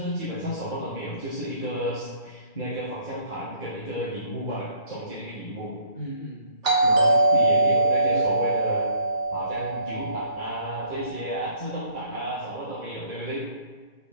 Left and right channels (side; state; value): right; late; 2.3 ms